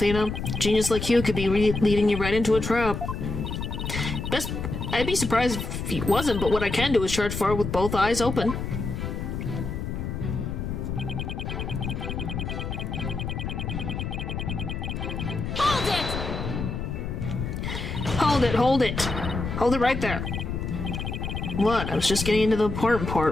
Genius like you could be leading you right into a trap. I'd be surprised if he wasn't, but what I can do is charge forward with both eyes open. Hold it! Hold it, hold it! Hold it right there. What? I was just getting into the important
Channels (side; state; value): left; noise; rumble, 4 dB below the sound